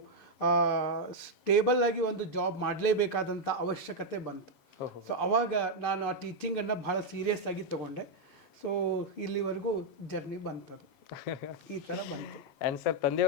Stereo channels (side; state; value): right; late; 7.0 ms